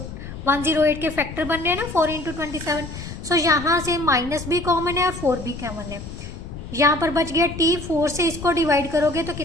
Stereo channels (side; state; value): left; noise; rumble, 10 dB below the sound